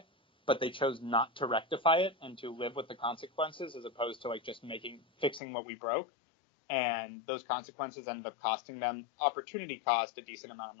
but they chose not to rectify it and to live with the consequences as opposed to like just fixing what we broke. And those consequences ended up costing them opportunity cost, a decent amount of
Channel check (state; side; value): drops out; right; at 5.4 s